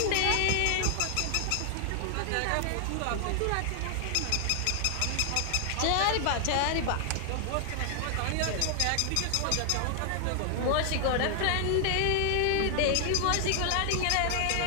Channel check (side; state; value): both; different; correlation 0.00